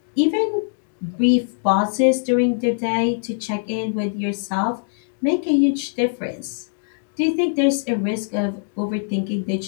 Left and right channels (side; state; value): right; silent; digital silence